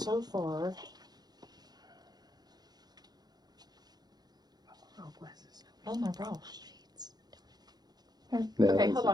far. Oh my gosh. No, Okay, it's- hold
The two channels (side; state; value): left; late; 0.19 ms